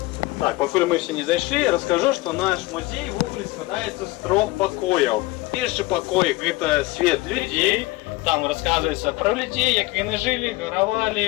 Так, поки ми всі не зайшли, розкажу, що наш музей в ogóle складається з 3 покоїв. Перший покой – це світ людей, там розказується про людей, як вони жили,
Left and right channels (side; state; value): right; quieter; 20.4 dB